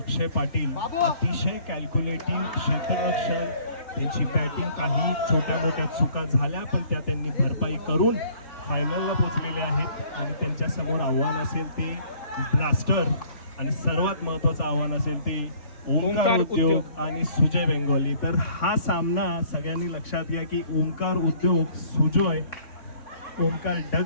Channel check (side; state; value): right; late; 3.6 ms